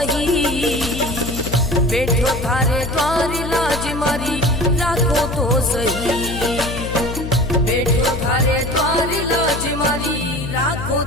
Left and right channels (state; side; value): noise; left; hum, 7 dB below the sound